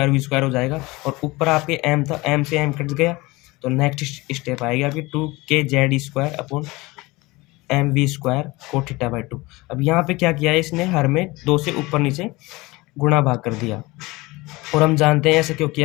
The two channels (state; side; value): quieter; right; 22.1 dB